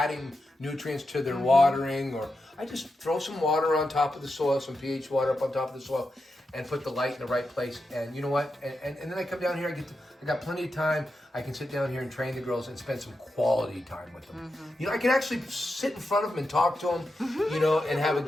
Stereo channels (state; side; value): normal; both; correlation 0.88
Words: nutrients to their watering, or I just throw some water on top of the soil, some pH water up on top of the soil, and put the light in the right place. And you know what? And then I come down here, I got plenty of time. I can sit down here and train the girls and spend some quality time with them. I can actually sit in front of them and talk to them, and have a